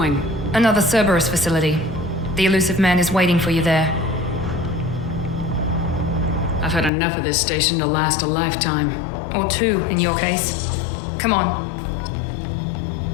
Another Cerberus facility. The elusive man is waiting for you there. I've had enough of this station to last a lifetime. Or two, in your case. Come on.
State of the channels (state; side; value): drops out; right; at 6.9 s